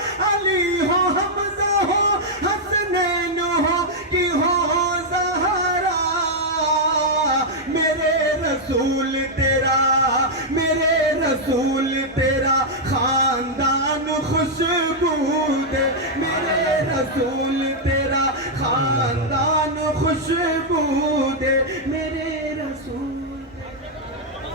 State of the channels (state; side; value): normal; both; correlation -0.04